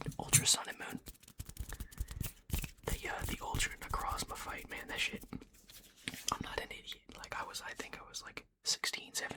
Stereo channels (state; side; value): identical; both; correlation 1.00